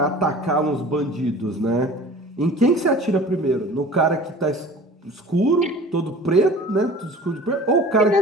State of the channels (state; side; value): normal; both; correlation 0.43